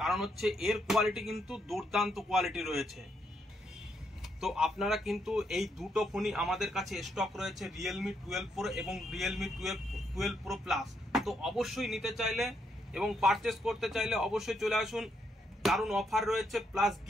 কারণ হচ্ছে এর কোয়ালিটি কিন্তু দুর্দান্ত কোয়ালিটি রয়েছে। তো আপনারা কিন্তু এই দুটো ফোনই আমাদের কাছে স্টক রয়েছে, রিয়েলমি 12 প্রো এবং রিয়েলমি 12 প্রো প্লাস। তো অবশ্যই নিতে চাইলে এবং পারচেস করতে চাইলে অবশ্যই চলে আসুন, দারুণ অফার রয়েছে প্লাস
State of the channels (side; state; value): both; normal; correlation 0.77